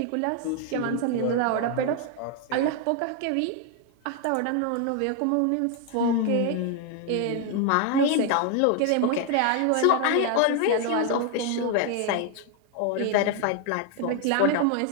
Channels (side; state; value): both; different; correlation 0.01